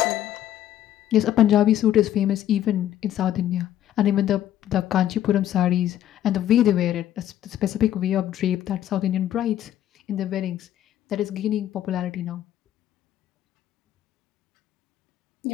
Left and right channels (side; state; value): right; quieter; 11.8 dB